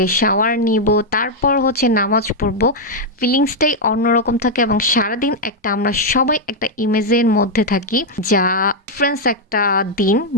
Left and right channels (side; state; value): both; normal; correlation -0.01